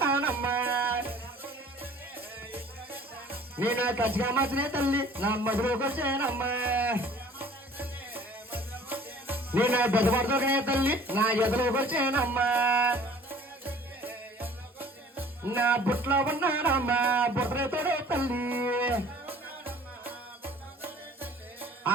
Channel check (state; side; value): normal; both; correlation 0.50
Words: నేను ఖచ్చితంగా మాత్రమే తల్లి నా మధురకు వచ్చానమ్మా నేను బెదపడుతునే తల్లి నా ఎదురుకు వచ్చానమ్మా నా బుట్లో ఉన్నానమ్మా బుట్రతోడే తల్లి